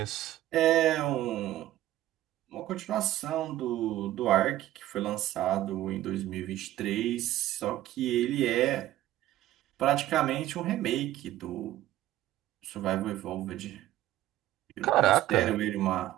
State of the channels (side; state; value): left; quieter; 14.2 dB